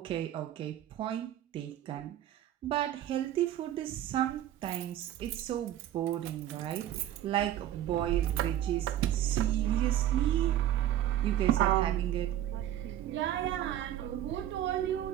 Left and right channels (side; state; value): left; quieter; 12.1 dB